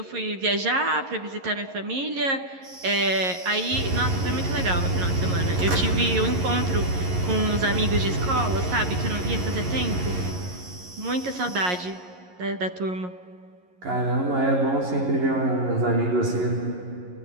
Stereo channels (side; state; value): left; late; 11 ms